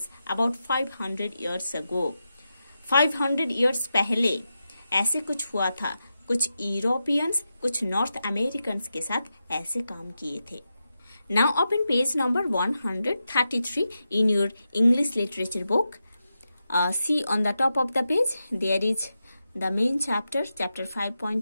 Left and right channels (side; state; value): both; inverted; correlation -0.89